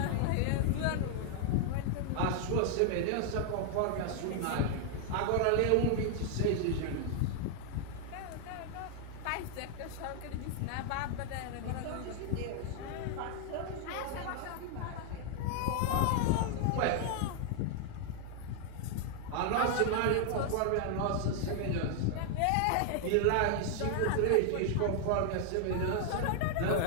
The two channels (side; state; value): both; different; correlation 0.00